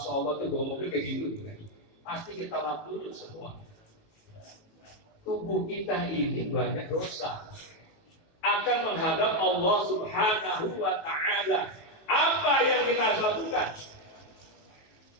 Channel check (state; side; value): late; right; 18 ms